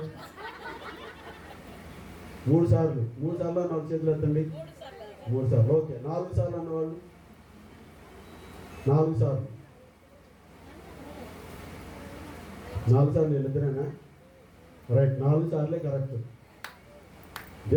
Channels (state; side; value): identical; both; correlation 1.00